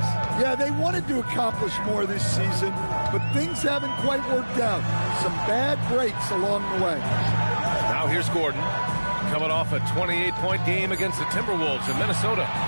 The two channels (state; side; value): inverted; both; correlation -1.00